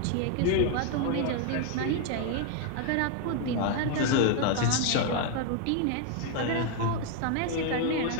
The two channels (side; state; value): both; different; correlation 0.01